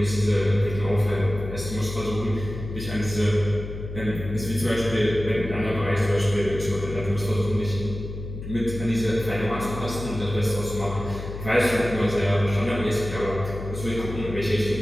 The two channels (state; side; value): noise; left; hum, 9 dB below the sound